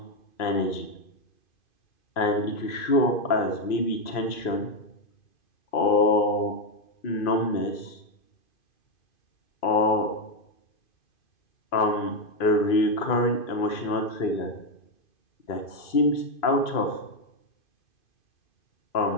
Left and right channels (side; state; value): right; late; 2.5 ms